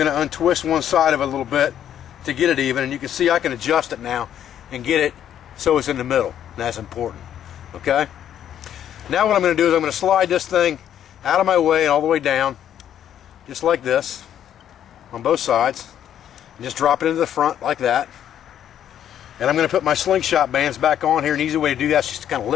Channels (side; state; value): right; quieter; 10.2 dB